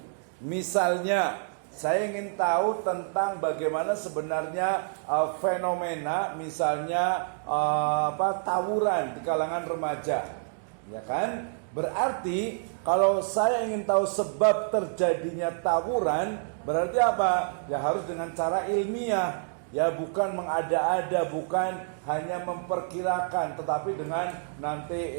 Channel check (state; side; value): silent; left; digital silence